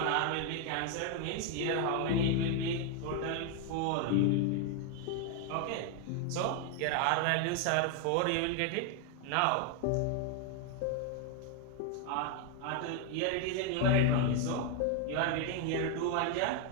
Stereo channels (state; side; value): different; both; correlation 0.01